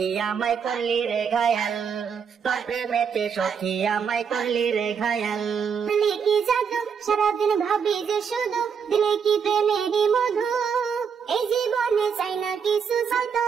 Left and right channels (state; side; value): quieter; left; 6.8 dB